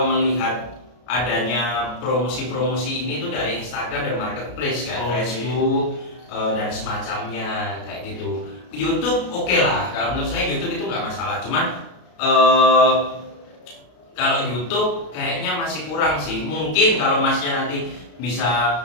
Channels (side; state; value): right; late; 33 ms